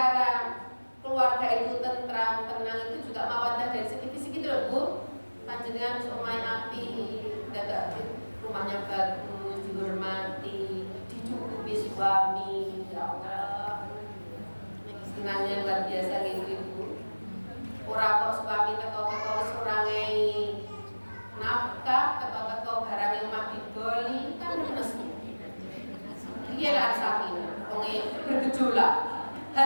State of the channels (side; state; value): both; inverted; correlation -1.00